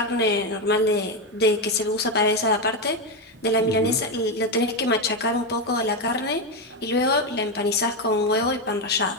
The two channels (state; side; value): normal; both; correlation 0.09